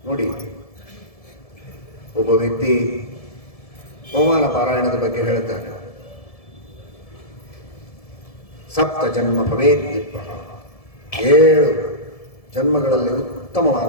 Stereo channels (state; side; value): late; right; 1.7 ms